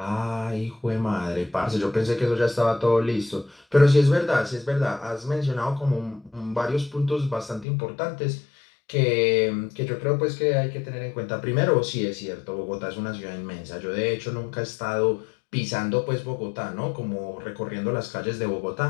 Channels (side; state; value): right; drops out; at 7.7 s